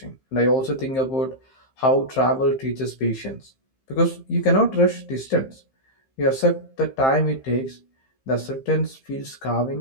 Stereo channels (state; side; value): late; right; 15 ms